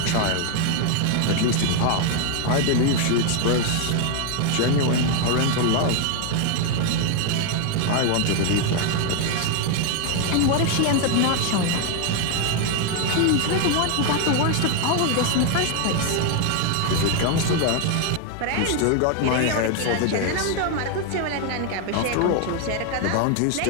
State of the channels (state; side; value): different; both; correlation 0.00